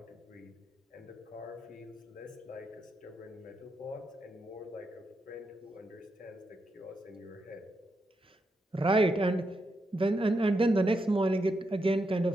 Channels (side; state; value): both; normal; correlation 0.83